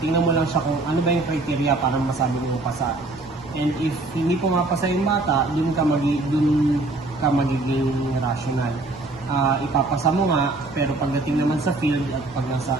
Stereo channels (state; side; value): quieter; left; 3.1 dB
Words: mo lang siya kung ano ba yung criteria para masabi mo pasa. And if hindi po mapasa yung bata, dun ka magiging rational. Ipapasa mo nga, pero pagdating naman sa field at pag